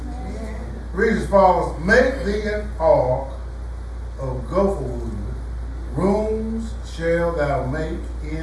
Read as follows. Make thee an ark of gopher wood. Rooms shall thou make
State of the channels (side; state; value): both; identical; correlation 1.00